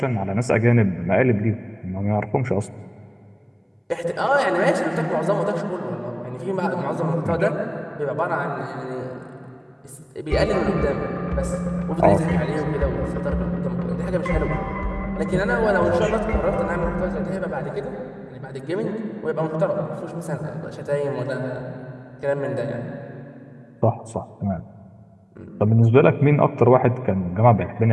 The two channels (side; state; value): both; identical; correlation 1.00